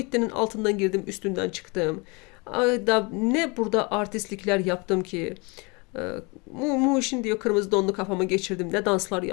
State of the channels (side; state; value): right; quieter; 28.9 dB